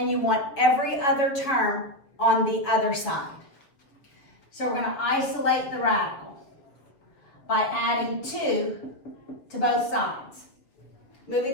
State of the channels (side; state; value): right; late; 6.9 ms